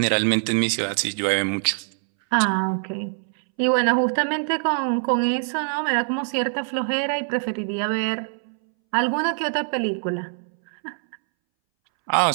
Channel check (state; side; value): silent; left; 62 dB below the other